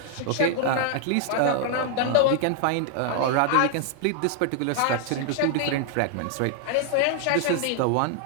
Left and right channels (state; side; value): different; both; correlation 0.00